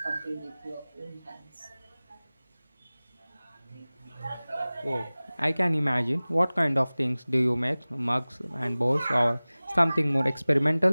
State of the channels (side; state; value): both; inverted; correlation -0.99